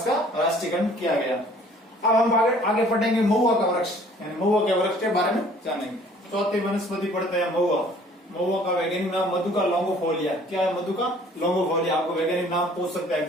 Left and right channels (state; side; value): normal; both; correlation 0.55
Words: का राष्ट्रीय गण किया गया। अब हम आगे पढ़ेंगे महुआ का वृक्ष, यानी महुआ के वृक्ष के बारे में जानेंगे। चौथी वनस्पति पढ़ते हैं महुआ। महुआ का वैज्ञानिक नाम मधुका लॉन्गोफोलिया। क्या है मधुका लॉन्गोफोलिया? आपको वैज्ञानिक नाम पूछ सकते हैं